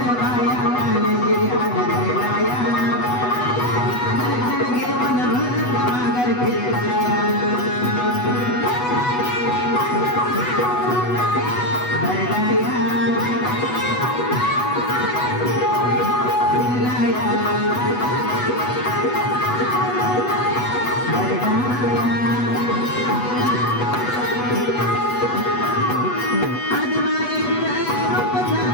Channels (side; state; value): right; late; 8.1 ms